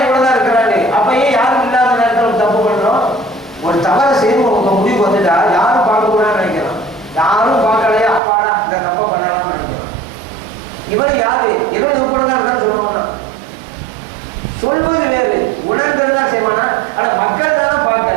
எவ்வளவுதான் இருக்கிறாரு, அப்பயே யாரும் இல்லாத நேரத்தில் தப்பு பண்றோம். ஒரு தவறை செய்து உங்க முடிவு வந்துட்டா யாரும் பார்க்க கூடாதுன்னு நினைக்கிறோம். யாரும் பார்க்கலையா அப்பாடா இந்த தப்பை பண்ணலாம்னு நினைக்கிறோம். இவர் யாரு, இவன் உட்படதான் இருக்கான்னு சொல்லுவானா? சொல்வது வேறு, உணர்ந்ததுதான் செய்வானா? ஆனா மக்கள் தானே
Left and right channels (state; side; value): drops out; left; at 8.2 s